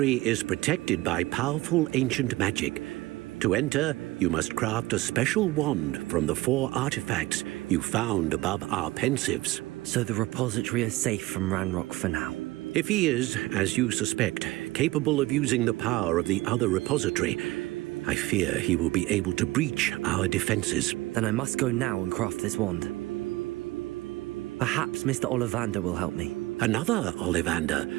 is protected by powerful ancient magic. To enter, you must craft a special wand from the 4 artifacts you found above our pensives. So the repository is safe from Ranrock for now? If he is, as you suspect, capable of using the power of the other repository, I fear he will be able to breach our defenses. Then I must go now and craft this wand. Perhaps Mr. Ollivander will help me. Another Ollivander?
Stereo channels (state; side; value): quieter; left; 19.2 dB